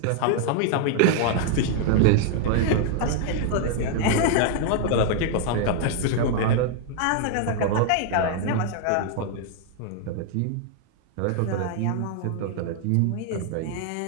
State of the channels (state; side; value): different; both; correlation 0.00